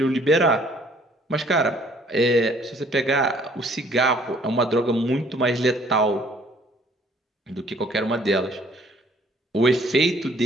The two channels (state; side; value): normal; both; correlation 0.59